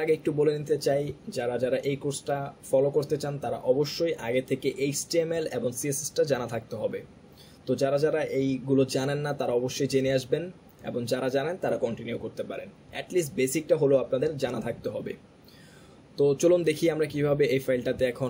আগে একটু বলে নিতে চাই, যারা যারা এই কোর্সটা ফলো করতে চান তারা অবশ্যই আগে থেকে HTML এবং CSSটা জানা থাকতে হবে। তো যারা যারা এইগুলো জানেন না তারা অবশ্যই জেনে আসবেন, এবং যারা জানেন তারা কন্টিনিউ করতে পারেন। অ্যাটলিস্ট বেসিকটা হলো আপনাদের জানা থাকতে হবে। তো চলুন দেখি আমরা কিভাবে এই ফাইলটাতে এখন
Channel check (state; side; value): identical; both; correlation 1.00